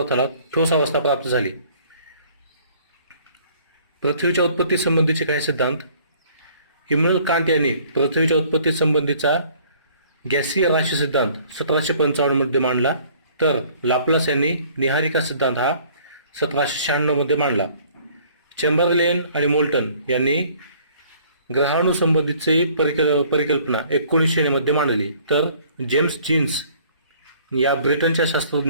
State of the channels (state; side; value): inverted; both; correlation -0.57